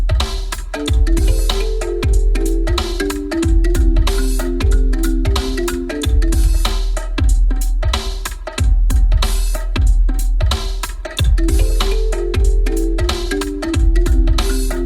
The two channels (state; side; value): identical; both; correlation 1.00